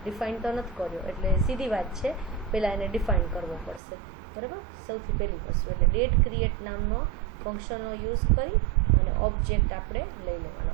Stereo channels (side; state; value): left; drops out; at 3.8 s